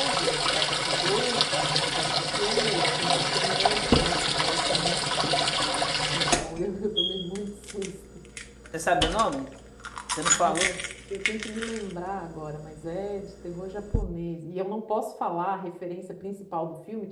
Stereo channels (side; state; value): both; identical; correlation 1.00